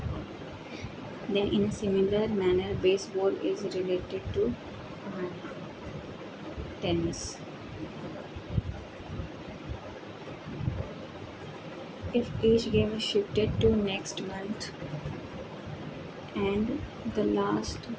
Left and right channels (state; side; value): identical; both; correlation 1.00